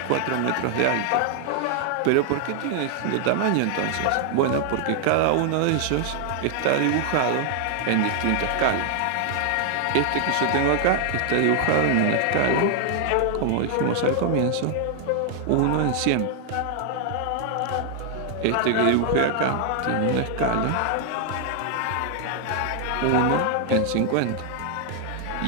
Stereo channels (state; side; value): different; both; correlation 0.00